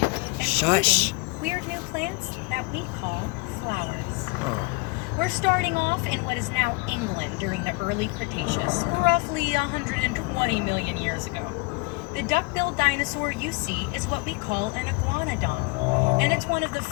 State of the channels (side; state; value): right; quieter; 26.9 dB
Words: Shush. including weird new plants that we call flowers. Oh. We're starting off in what is now England during the early Cretaceous, roughly 120 million years ago. The duck-billed dinosaur you see is what we call an iguanodon, and it's one of the